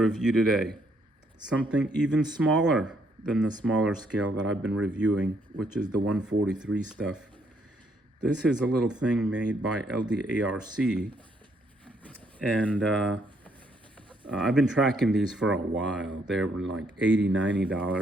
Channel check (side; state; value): both; normal; correlation 0.71